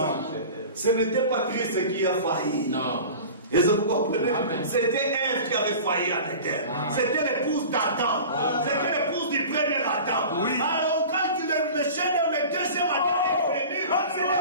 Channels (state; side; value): inverted; both; correlation -0.37